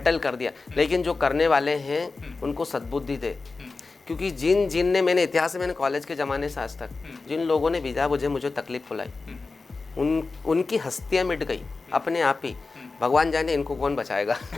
कर दिया। लेकिन जो करने वाले हैं उनको सद्बुद्धि दे, क्योंकि जिन ने मैंने इतिहास में, मैंने कॉलेज के ज़माने से आज तक जिन लोगों ने बिना वजह मुझे तकलीफ बुलाई, उनकी हस्तियाँ मिट गई अपने आप ही। भगवान जाने इनको कौन बचाएगा।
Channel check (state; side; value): quieter; right; 3.9 dB